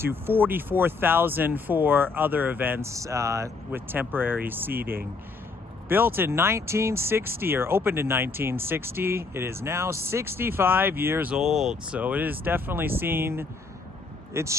44,000 for other events with temporary seating. Built in 1960, or opened in 1960, it is now 65 years old. So it has definitely seen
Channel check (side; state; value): right; quieter; 4.1 dB